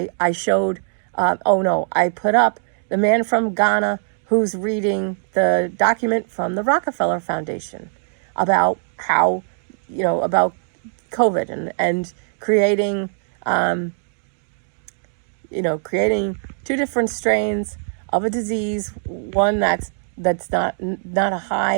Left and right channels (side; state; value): left; silent; digital silence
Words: showed, I put up the man from Ghana who's reading the document from the Rockefeller Foundation about how, about COVID and creating, creating two different strains of a disease, one that's not a